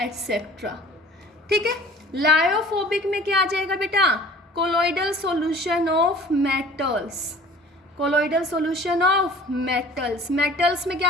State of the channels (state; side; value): normal; both; correlation 0.47